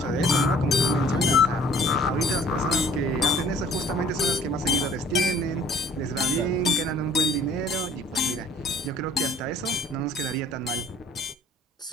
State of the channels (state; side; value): normal; both; correlation 0.53